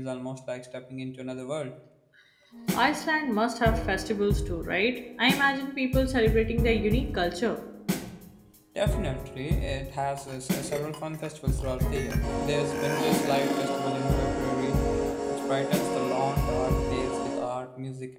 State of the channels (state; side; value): identical; both; correlation 1.00